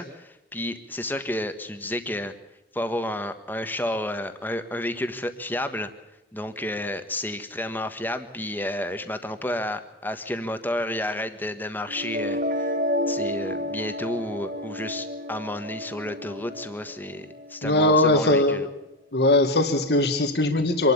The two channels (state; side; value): normal; both; correlation 0.21